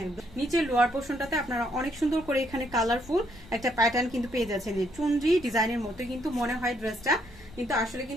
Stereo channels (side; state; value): left; noise; rumble, 22 dB below the sound